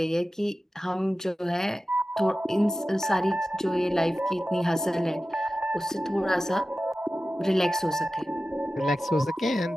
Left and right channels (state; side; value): normal; both; correlation 0.94